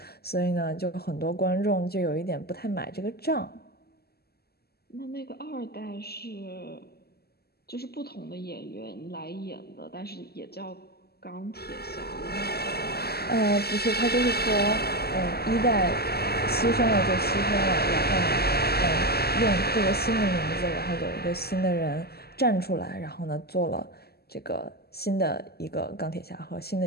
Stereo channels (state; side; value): late; right; 0.46 ms